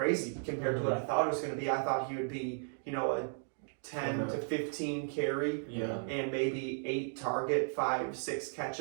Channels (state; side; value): silent; left; 54 dB below the other